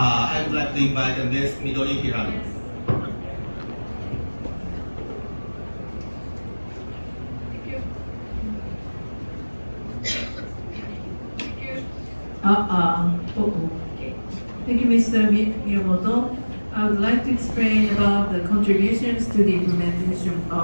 would like to invite Ms. Midori Hirano. Thank you, Mr. Miyamoto. I would like to explain about the contributions to the implementation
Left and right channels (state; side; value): inverted; both; correlation -1.00